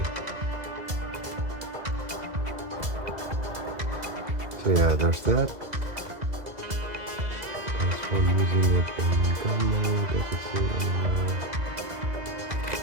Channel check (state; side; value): late; left; 2.0 ms